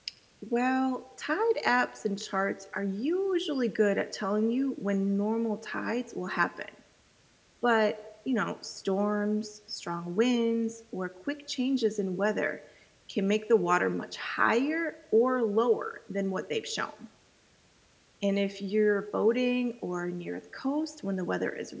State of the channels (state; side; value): identical; both; correlation 1.00